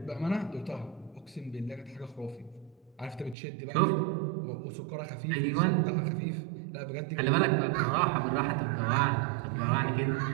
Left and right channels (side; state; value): left; drops out; at 3.4 s